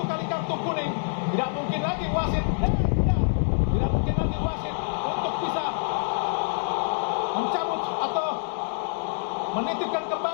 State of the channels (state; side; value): silent; right; digital silence